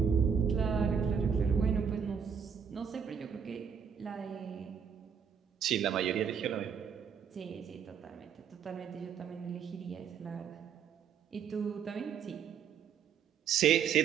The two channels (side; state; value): left; quieter; 7.2 dB